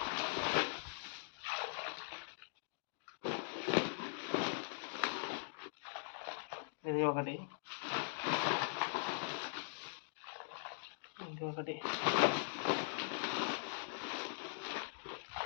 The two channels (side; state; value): right; silent; digital silence